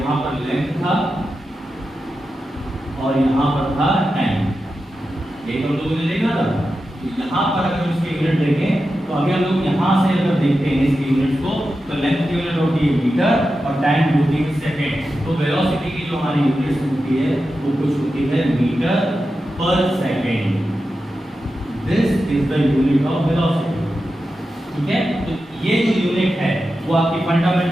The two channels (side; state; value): both; normal; correlation 0.91